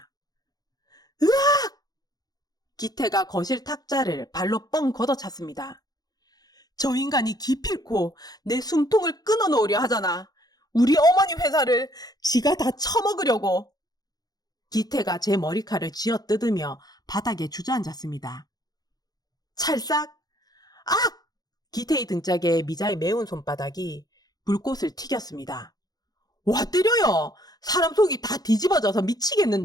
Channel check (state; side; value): late; right; 0.19 ms